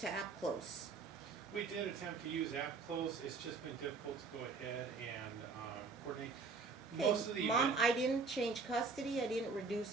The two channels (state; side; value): quieter; left; 4.4 dB